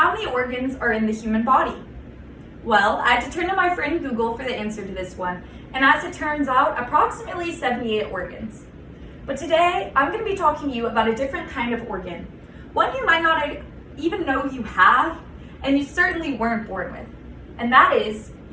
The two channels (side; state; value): both; identical; correlation 1.00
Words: many organs are in the human body? Well, I had to turn to my friend Google for the answer to this one, and as it turns out, approximately 78 organs. But today, I'm going to be talking to you about a different kind of organ, one you might not even know you have, and you certainly weren't born with, and that is